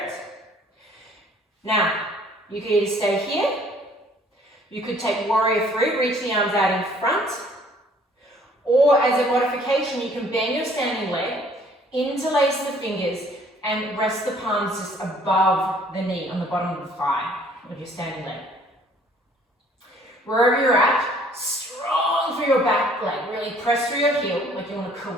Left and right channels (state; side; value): normal; both; correlation 0.58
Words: it. Now, you could either stay here. You could take warrior 3, reach the arms out in front. Or as a modification, you can bend your standing leg, interlace the fingers, and rest the palms just above the knee on the bottom of the thigh of your standing leg. Wherever you're at, strong through your back leg. Really press through your heel like you want to